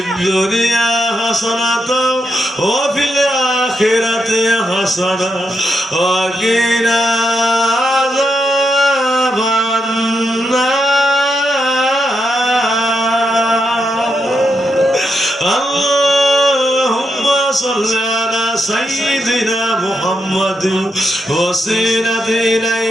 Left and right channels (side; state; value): both; normal; correlation 0.82